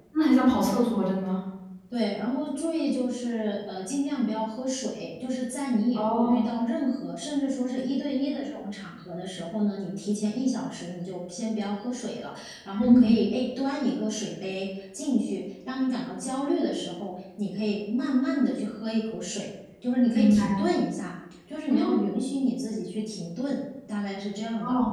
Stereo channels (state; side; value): identical; both; correlation 1.00